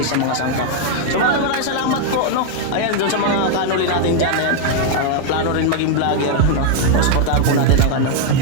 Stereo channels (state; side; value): different; both; correlation 0.00